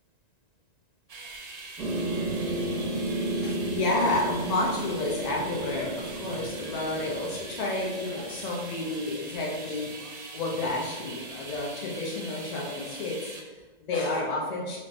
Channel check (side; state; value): right; late; 1.9 ms